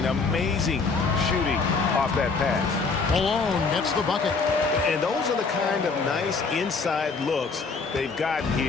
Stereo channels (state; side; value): quieter; right; 4.5 dB